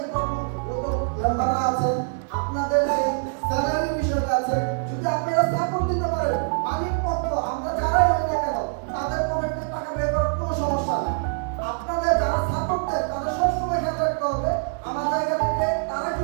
কর্মরত মেম্বাররা আছেন, আপনাদের যে স্যালারি বিষয়টা আছে, যদি আপনারা সাপোর্ট দিতে পারেন, মালিক পক্ষ আমরা যারাই হই না কেন তাদের পকেটে টাকা বের করার কোনো সমস্যা নেই। আপনাদের যারা সাপোর্ট দেন তাদের সবসময় খেয়াল রাখতে হবে আমার জায়গা থেকে তারা কি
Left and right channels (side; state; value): left; silent; digital silence